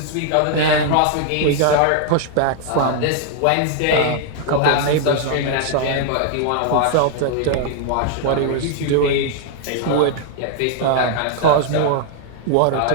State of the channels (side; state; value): both; different; correlation 0.00